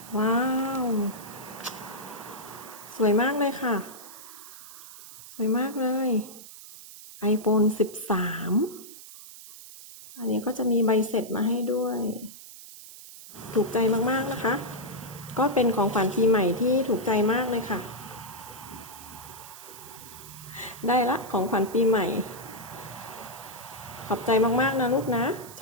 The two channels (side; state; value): right; noise; hiss, 16 dB below the sound